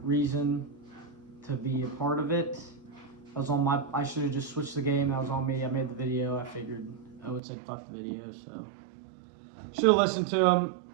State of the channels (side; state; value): left; drops out; at 7.4 s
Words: reason to be a part of it. That was on my. I should have just switched the game. That was on me. I made the video. I figured Owen said fuck the video, so should have listened to